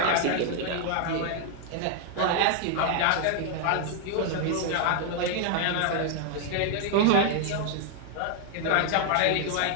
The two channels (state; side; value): different; both; correlation 0.00